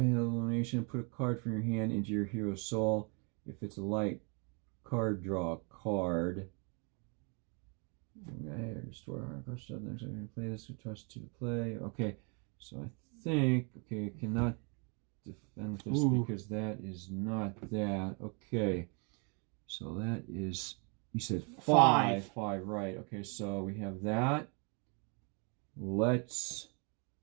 Put a card from your hand into your hero's soul. If it's a light card, draw a card. Okay, restore hard card stuff. Next time you play this, we trust to play. Okay, so I think I cannot defend this because that is not that. Okay, so that is, you said 5, right? Okay, so we have that. So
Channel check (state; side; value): quieter; left; 35.3 dB